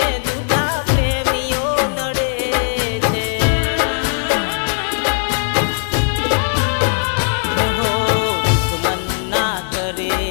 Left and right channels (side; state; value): right; silent; 62 dB below the other